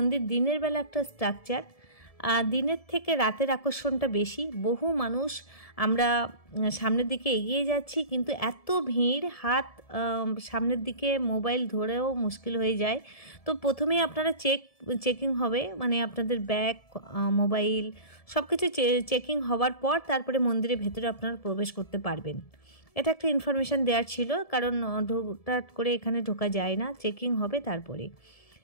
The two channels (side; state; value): right; late; 1.7 ms